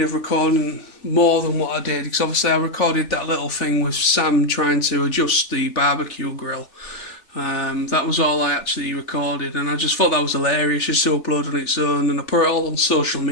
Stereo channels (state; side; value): late; right; 3.4 ms